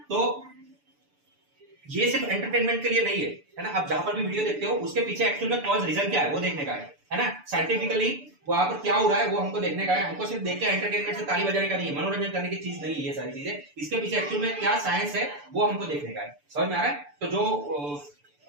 तो ये सिर्फ एंटरटेनमेंट के लिए नहीं है ना। आप जहां पर भी वीडियो देखते हो उसके पीछे एक्चुअल में कॉज रीजन क्या है वो देखने का है ना। साइंटिफिकली वहां पर क्या हो रहा है वो हमको देखने का है। हमको सिर्फ देख के एंटरटेनमेन से ताली बजाने का नहीं है, मनोरंजन करने की चीज नहीं है ये सारी चीजें। इसके पीछे एक्चुअल में क्या साइंस है वो हमको देखने का है। समझ में आ रहा है? तो जो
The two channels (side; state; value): left; late; 6.9 ms